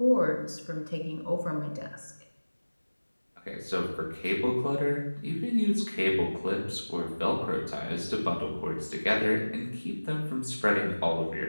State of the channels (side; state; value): both; inverted; correlation -1.00